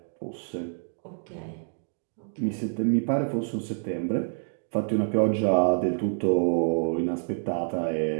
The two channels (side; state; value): left; silent; digital silence